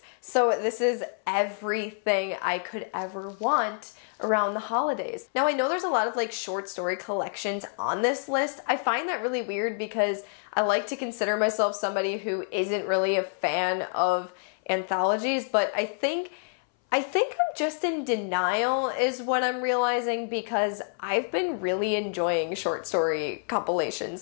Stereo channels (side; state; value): right; silent; 60 dB below the other